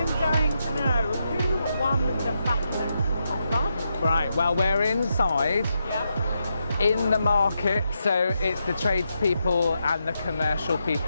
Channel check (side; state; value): both; inverted; correlation -0.83